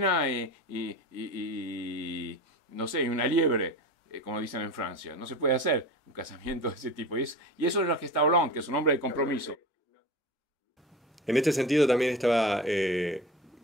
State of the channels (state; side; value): normal; both; correlation 0.31